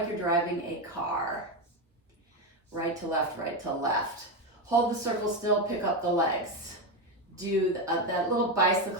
you're driving a car. Right to left, right to left. Hold the circle still, pick up the legs. Do that little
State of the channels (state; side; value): normal; both; correlation 0.12